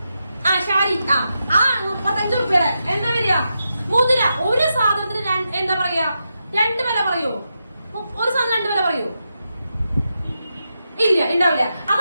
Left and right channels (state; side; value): inverted; both; correlation -0.86